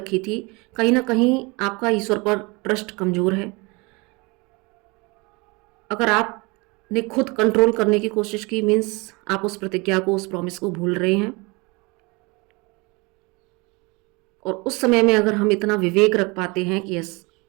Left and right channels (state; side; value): quieter; left; 26.8 dB